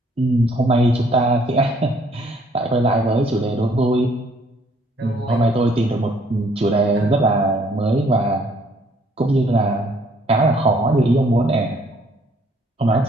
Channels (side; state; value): both; normal; correlation 0.63